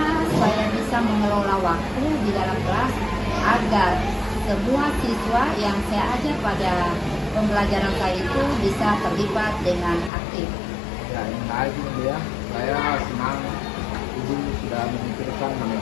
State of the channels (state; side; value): drops out; right; at 10.1 s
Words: saya bisa mengelola waktu di dalam kelas agar semua siswa yang saya ajar pada pembelajaran saya itu bisa terlibat dengan aktif. Ya, yang menarik ini Bu ya. Saya senang Ibu sudah memikirkan